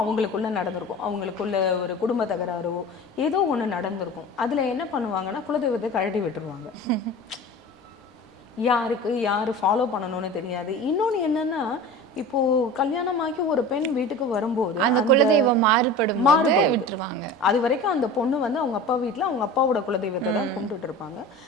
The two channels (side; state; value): both; normal; correlation 0.35